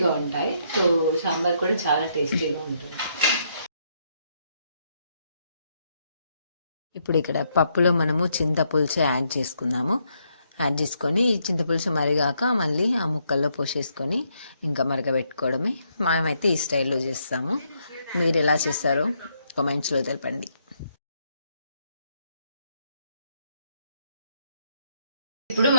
ఉంటాయి. సో సాంబార్ కూడా చాలా టేస్టీగా ఉంటుంది. ఇప్పుడు ఇక్కడ పప్పులో మనము చింతపులుసు యాడ్ చేసుకుందాము. యాడ్ చేసుకొని ఈ చింతపులుసు మరిగాక మళ్ళీ ఆ ముక్కల్లో పోసేసుకొని ఇంకా మరగబెట్టుకోవడమే. మనమైతే ఈ స్టైల్లో చేస్తాము. మీరు ఎలా చేస్తారో కామెంట్స్లో తెలపండి. ఇప్పుడు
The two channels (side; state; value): both; inverted; correlation -0.75